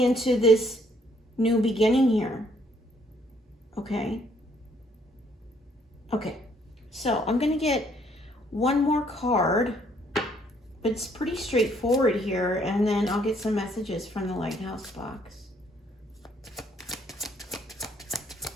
this new beginning here. Okay. Okay, so I'm gonna get one more card, but it's pretty straightforward here, and then I'll get some messages from the Lighthouse box.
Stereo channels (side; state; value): both; normal; correlation 0.66